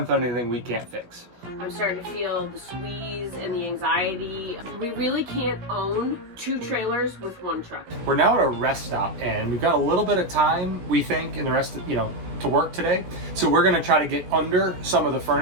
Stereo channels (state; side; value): late; left; 16 ms